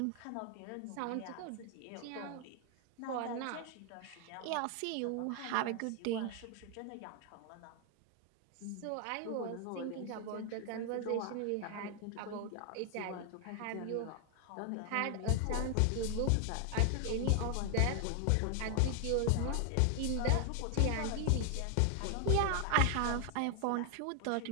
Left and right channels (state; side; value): different; both; correlation 0.00